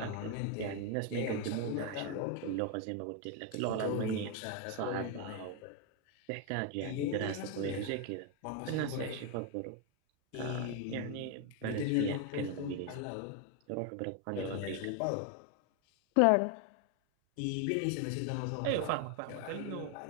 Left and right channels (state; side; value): different; both; correlation 0.01